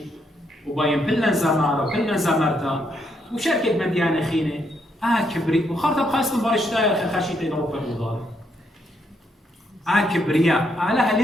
وباين بلن زمارة وبلن زمرتا وشركة مديانة خينة كبري وخاطر بخاصة برشتاير خشيتين أوروبا وضار كبرياء علىها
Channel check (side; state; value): both; normal; correlation 0.76